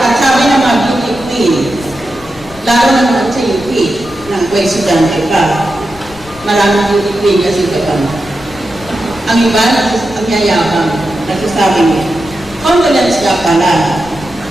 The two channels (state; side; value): noise; left; rumble, 20 dB below the sound